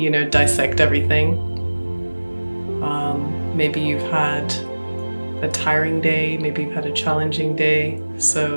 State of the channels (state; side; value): inverted; both; correlation -1.00